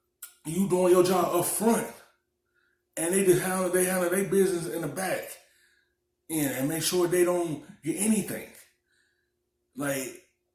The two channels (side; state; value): both; identical; correlation 1.00